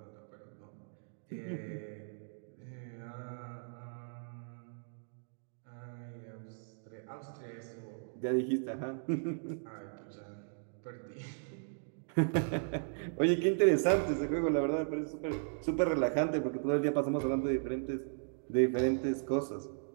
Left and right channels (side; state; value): left; silent; digital silence